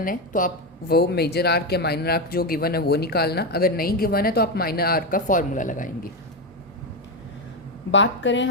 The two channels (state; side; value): normal; both; correlation 0.10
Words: है तो आप वो मेजर आर्क या माइनर आर्क जो गिवन है वो निकालना, अगर नहीं गिवन है तो आप माइनर आर्क का फॉर्मूला लगाएंगे। बात करें